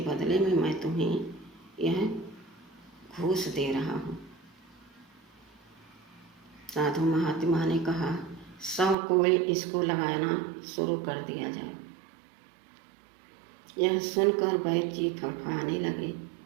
बदले में मैं तुम्हें यह घूस दे रहा हूँ। साधु महात्मा ने कहा, 100 कोड़े इसको लगाना शुरू कर दिया जाए। यह सुनकर वैद्य जी फड़फड़ाने लगे,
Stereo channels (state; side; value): drops out; left; at 9.0 s